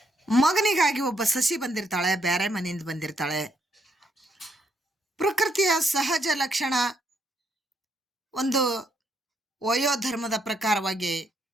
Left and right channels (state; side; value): normal; both; correlation 0.74